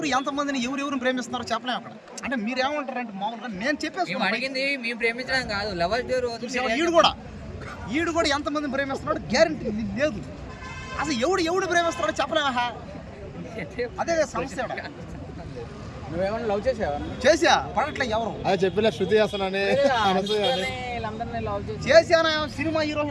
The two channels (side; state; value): both; identical; correlation 1.00